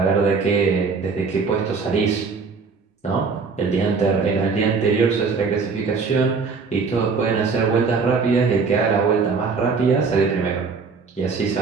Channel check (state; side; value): quieter; left; 4.8 dB